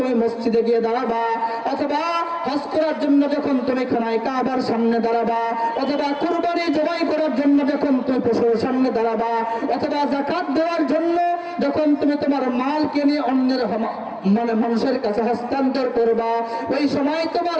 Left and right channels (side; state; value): both; identical; correlation 1.00